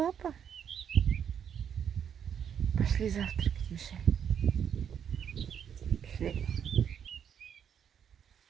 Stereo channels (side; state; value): left; quieter; 8.2 dB